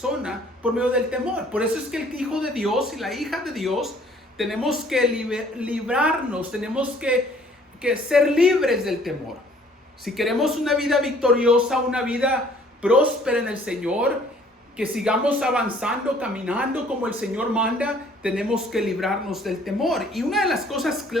por medio del temor. Por eso es que el hijo de Dios y la hija de Dios tenemos que librarnos, tenemos que ser libres del temor. Si queremos una vida victoriosa, una vida próspera en el Señor, que sigamos avanzando, caminando como el Señor manda, tenemos que librarnos del temor. Y una de las cosas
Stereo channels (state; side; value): normal; both; correlation 0.58